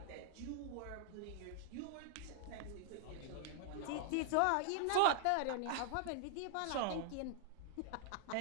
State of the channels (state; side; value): different; both; correlation -0.01